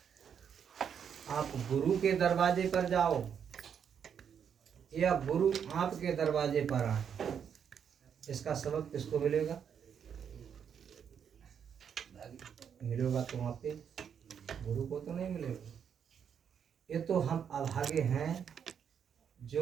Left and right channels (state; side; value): quieter; left; 7.8 dB